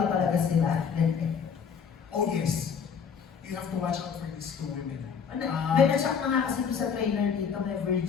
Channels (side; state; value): right; quieter; 6.7 dB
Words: talaga sila. Oh yes, you have to watch out for these 2 women. May na-shock na nga kasi doon sa trailer dito, may